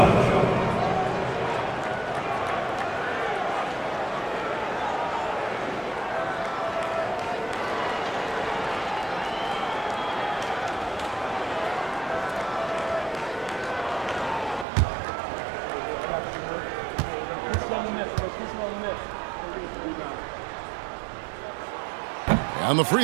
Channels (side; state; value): left; drops out; at 14.7 s